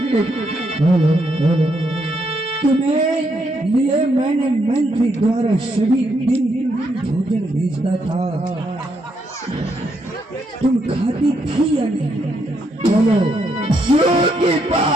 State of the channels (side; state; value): both; normal; correlation 0.77